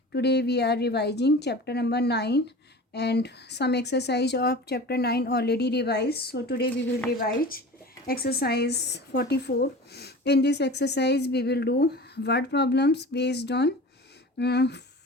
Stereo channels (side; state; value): both; normal; correlation 0.37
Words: Today we are revising chapter number 9 and some exercise of chapter 9 already revised. So today we will revise exercise 44. In this exercise we will do word problems based on